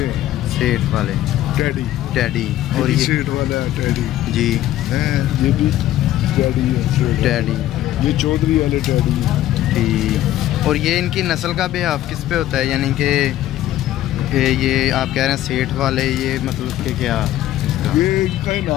हैं। सेठ वाले टैडी और ये सेठ वाला है टैडी जी हैं। ये भी टैडी है, टैडी। ये चौधरी वाले टैडी है। ठीक। और ये इनकी नस्ल का भी आप किस पे होता है, यानी कि ये आप कह रहे हैं सेठ वाले, ये मतलब कि क्या? ये इनका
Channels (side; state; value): right; quieter; 13.6 dB